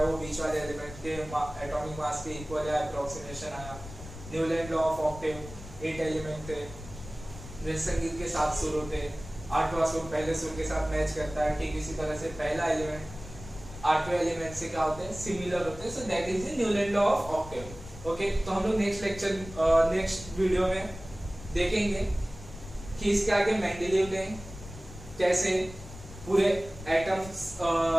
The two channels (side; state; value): left; noise; rumble, 14 dB below the sound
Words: वो बीच वाले एलिमेंट के एटॉमिक मास के इक्वल या अप्रोक्सीमेशन आया। Newland law of octave, 8 element थे। जैसे संगीत के 7 सुर होते, 8वां सुर पहले सुर के साथ मैच करता है। ठीक इसी तरह से पहला एलिमेंट 8वें एलिमेंट से क्या होते हैं, सिमिलर होते हैं। So that is the Newland law of octave. Okay, तो हम लोग नेक्स्ट वीडियो में देखेंगे कि इसके आगे मेंडेलीव ने कैसे पूरे एटम्स